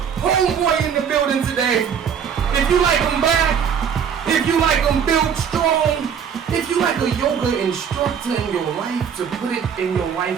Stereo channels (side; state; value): left; quieter; 7.6 dB